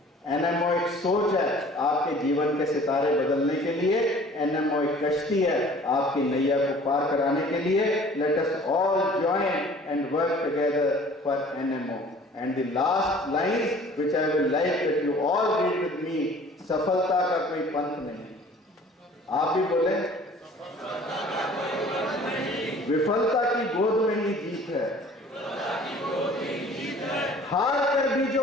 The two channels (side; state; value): both; normal; correlation 0.50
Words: एनएमओ एक सोच है आपके जीवन के सितारे बदलने के लिए। एनएमओ एक कश्ती है आपकी नैया को पार कराने के लिए। Let us all join and work together for NMO. And the last lines which I will like that you all read with me, सफलता का कोई पंथ नहीं। आप भी बोले, विफलता की गोद में ही जीत है, हार कर भी